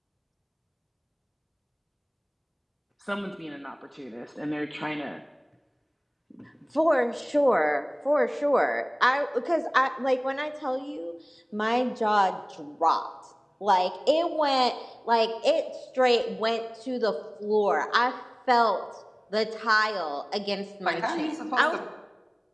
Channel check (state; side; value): identical; both; correlation 1.00